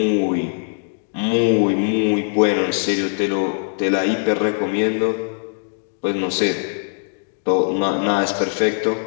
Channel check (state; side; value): silent; right; digital silence